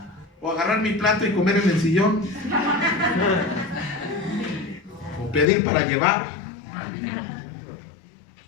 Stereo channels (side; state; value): right; drops out; at 5.5 s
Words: ¿O agarrar mi plato y comer en el sillón? ¿O pedir para llevar?